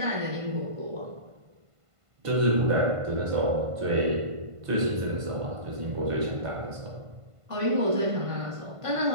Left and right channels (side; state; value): left; late; 1.5 ms